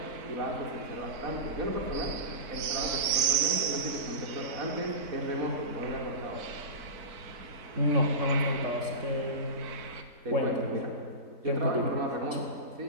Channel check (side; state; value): left; late; 4.5 ms